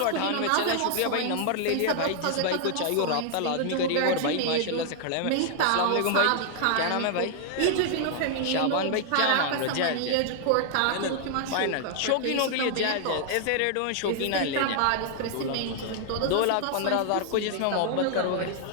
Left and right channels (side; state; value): both; different; correlation 0.00